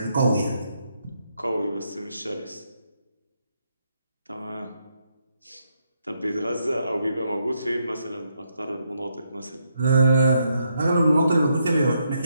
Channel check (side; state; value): both; inverted; correlation -0.78